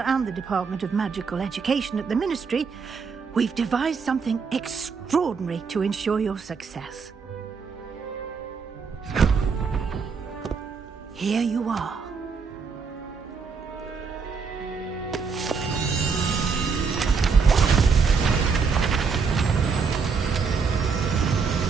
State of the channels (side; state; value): left; quieter; 5.4 dB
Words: and the Department of Magical Education at the Ministry, we've devised something extraordinary to ensure your success. Here you are.